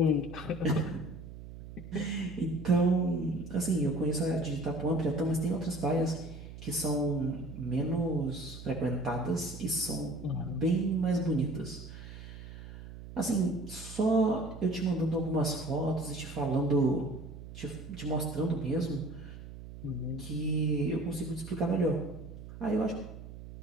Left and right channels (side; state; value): right; noise; hum, 13 dB below the sound